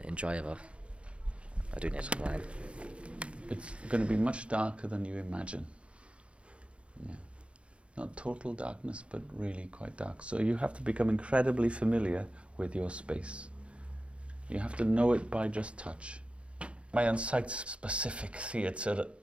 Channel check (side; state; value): left; late; 0.059 ms